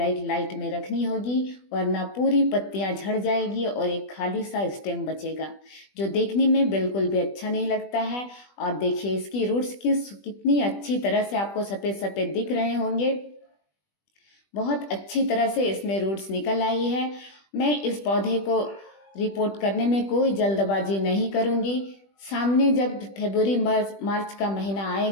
लाइट में रखनी होगी, वरना पूरी पत्तियां झड़ जाएगी और एक खाली सा स्टेम बचेगा, जो देखने में बिल्कुल भी अच्छा नहीं लगता है। और देखिए, इसकी रूट्स कितनी अच्छी तरह से आपको सफ़ेद सफ़ेद दिख रहे होंगे। बहुत अच्छी तरह से इसमें रूट्स निकल आई है। मैं इस पौधे को रिपोर्ट करने में कोई जल्दबाजी नहीं करूँगी। सामने जब फरवरी मार्च का महीना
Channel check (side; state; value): right; late; 20 ms